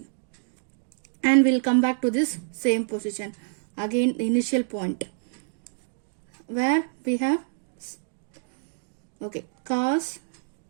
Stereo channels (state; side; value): silent; left; digital silence